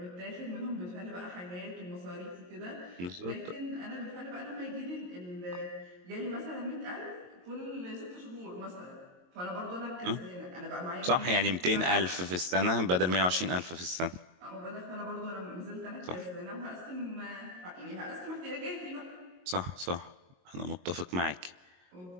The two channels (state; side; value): late; left; 22 ms